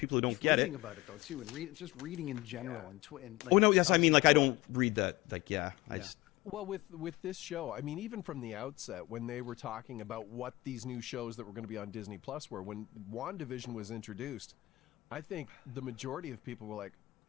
who don't get it. Reading about it though too, and just reading in general, and like, I mean, like, I don't read that. Like, I just. Well, with this show, I mean, even from the outset, when they were talking about what these new shows that were going to be on Disney Plus were, when Wandavision was introduced, I think the majority of people were like,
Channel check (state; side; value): quieter; right; 19.7 dB